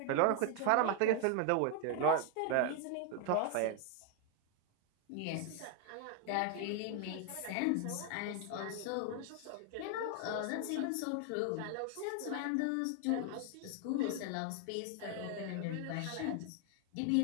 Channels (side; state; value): both; different; correlation 0.00